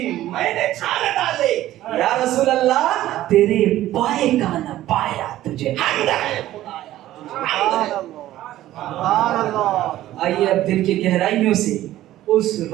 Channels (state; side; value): quieter; left; 14.3 dB